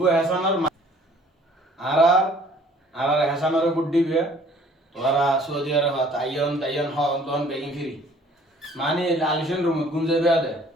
হেসানের আর আর হেসানের বুট দিবে তোরা সৌদি আরব তাইয়ন তাইয়ন হন বেগিন ফিরি মানে লালিশন রুম গুঞ্জে বেয়া দে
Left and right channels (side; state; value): both; normal; correlation 0.55